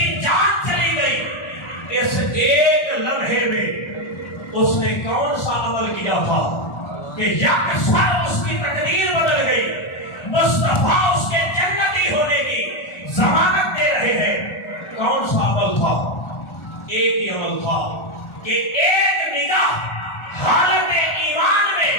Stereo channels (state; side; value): late; right; 1.4 ms